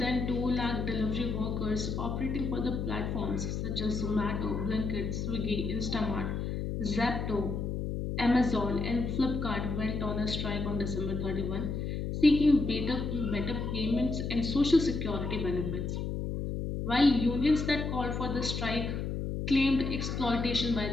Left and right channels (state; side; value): noise; left; hum, 3 dB below the sound